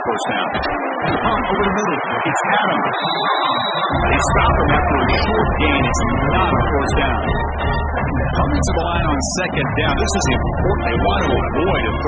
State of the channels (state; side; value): identical; both; correlation 1.00